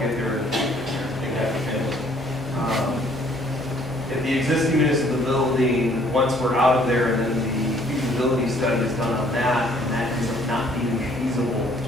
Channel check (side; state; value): both; normal; correlation 0.61